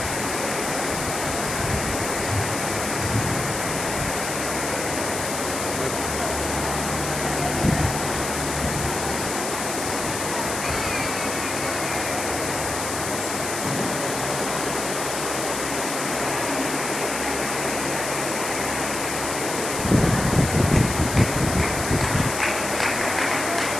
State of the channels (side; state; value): left; noise; hiss, 5 dB below the sound